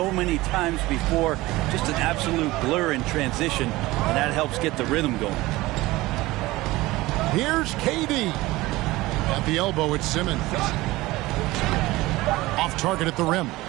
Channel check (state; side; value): quieter; left; 19.2 dB